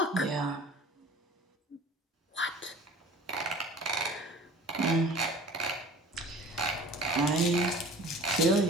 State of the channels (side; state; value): both; normal; correlation 0.44